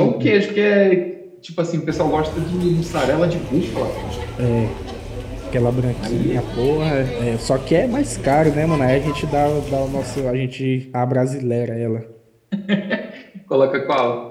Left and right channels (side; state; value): both; identical; correlation 1.00